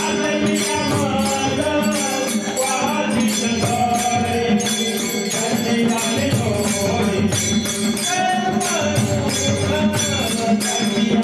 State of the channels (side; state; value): both; identical; correlation 1.00